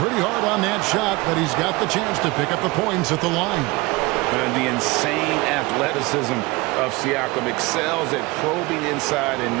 hard on that shot, but he's got the chance to pick up the points at the line. And the insane athleticism of Siakam excels at probing inside and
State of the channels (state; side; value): quieter; left; 22.9 dB